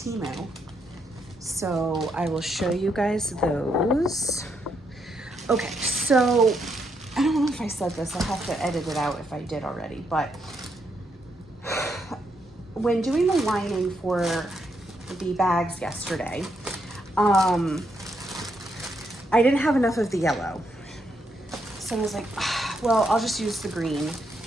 So I will show you guys those. Okay, so I don't know if I said this. I'll have to edit it out if I did already, but when doing the lining for the bags yesterday, I didn't have enough of the yellow. So I was like, well, I'll just use the green,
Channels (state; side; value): normal; both; correlation 0.78